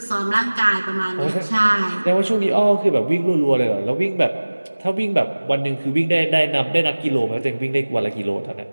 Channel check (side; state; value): both; inverted; correlation -1.00